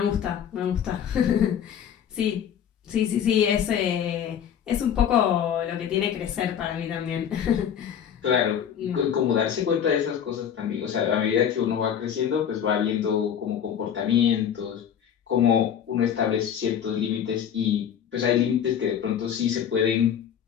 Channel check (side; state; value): right; quieter; 8.8 dB